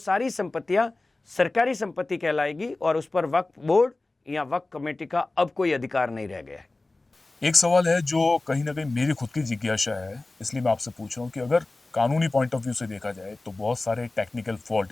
संपत्तियां सरकारी संपत्ति कहलाएगी और उस पर वक्फ बोर्ड या वक्फ कमेटी का अब कोई अधिकार नहीं रह गया है। एक सवाल है जो कहीं ना कहीं मेरी खुद की जिज्ञासा है, इसलिए मैं आपसे पूछ रहा हूँ कि अगर कानूनी पॉइंट ऑफ व्यू से देखा जाए तो बहुत सारे टेक्निकल फॉल्ट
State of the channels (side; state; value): right; quieter; 3.1 dB